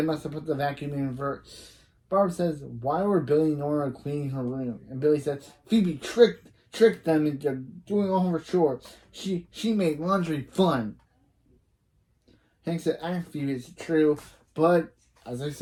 must have put the vacuum in reverse. Barb says, why were Billy and Nora cleaning her room? And Billy says, Phoebe tricked them into doing all her chores. She made laundry fun. Hank said, Phoebe, it's true, but as I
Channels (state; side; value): identical; both; correlation 1.00